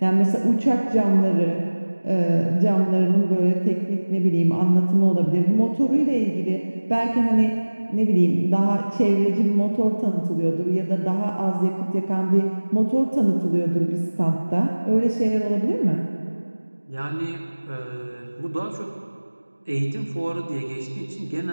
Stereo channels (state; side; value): inverted; both; correlation -1.00